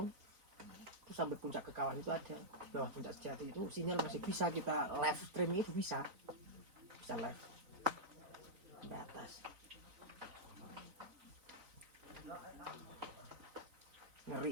itu sampai puncak ke kawan itu ada di bawah puncak Sejati itu sinyal masih bisa kita live streaming itu bisa live sampai atas.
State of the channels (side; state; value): left; late; 3.9 ms